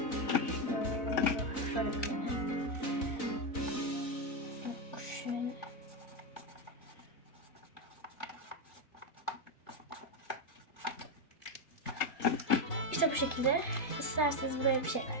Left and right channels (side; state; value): right; late; 3.9 ms